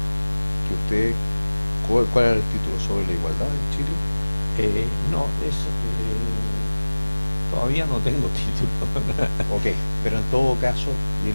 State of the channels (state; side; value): inverted; both; correlation -1.00